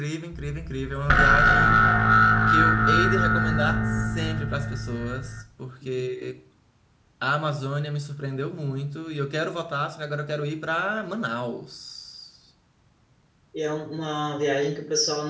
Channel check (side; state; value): both; identical; correlation 1.00